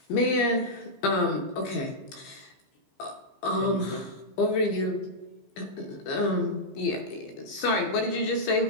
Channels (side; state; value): right; late; 15 ms